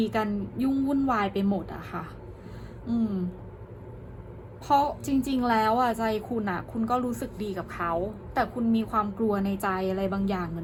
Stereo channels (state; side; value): identical; both; correlation 1.00